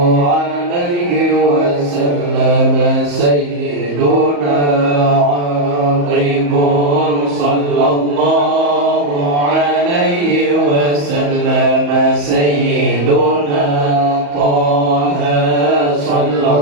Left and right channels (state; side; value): late; left; 35 ms